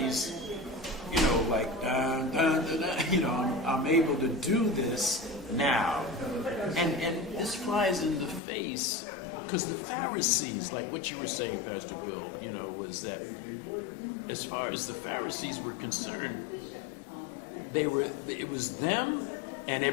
like, dun, dun, dun, dun, I'm able to do this now. And this flies in the face, because the Pharisees, like what you were saying, Pastor Will, was that as far as the Pharisees were concerned, it was them and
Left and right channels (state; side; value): drops out; right; at 8.4 s